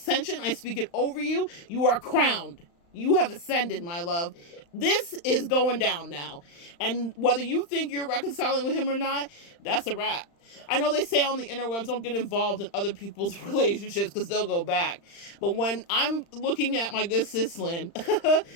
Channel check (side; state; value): right; late; 35 ms